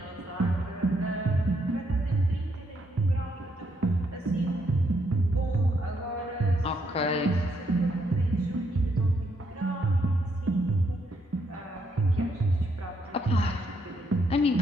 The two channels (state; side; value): normal; both; correlation 0.75